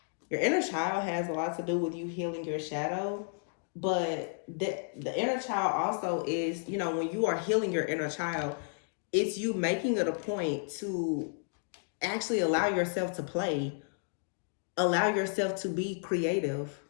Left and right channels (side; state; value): right; silent; 56 dB below the other